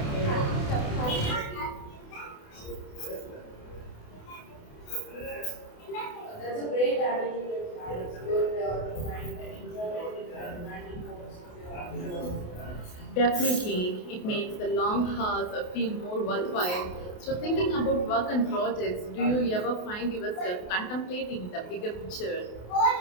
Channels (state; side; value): late; right; 28 ms